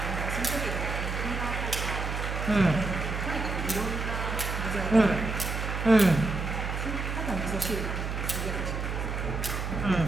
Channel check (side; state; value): right; noise; hum, 3 dB below the sound